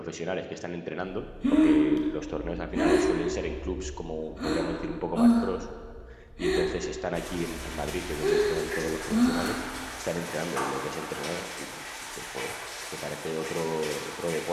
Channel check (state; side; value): identical; both; correlation 1.00